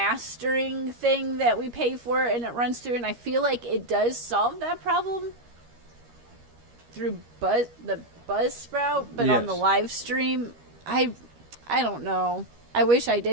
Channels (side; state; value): left; late; 13 ms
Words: thing that we pay for and it runs through. And I feel like it does solve that problem through the Buzzsprout, but yes. On the live stream, I don't know. I wish I